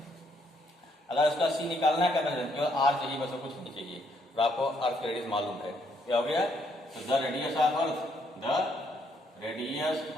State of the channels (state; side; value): normal; both; correlation 0.72